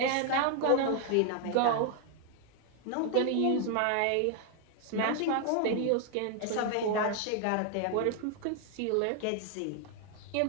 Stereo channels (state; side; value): different; both; correlation 0.00